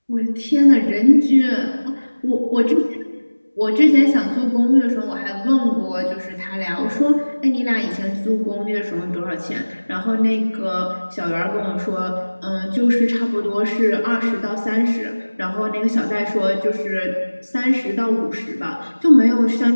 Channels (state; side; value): inverted; both; correlation -1.00